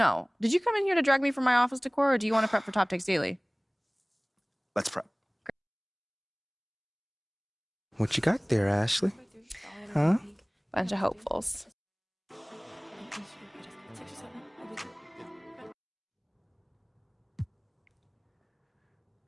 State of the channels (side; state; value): both; identical; correlation 1.00